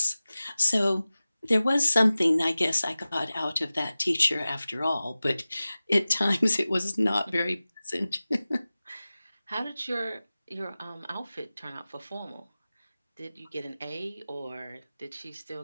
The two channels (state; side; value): inverted; both; correlation -0.96